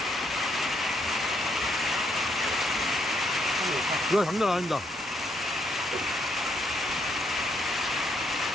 이거 장난 아닙니다.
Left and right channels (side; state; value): both; normal; correlation 0.73